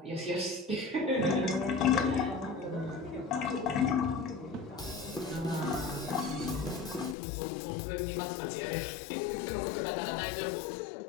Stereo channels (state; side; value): drops out; right; at 7.2 s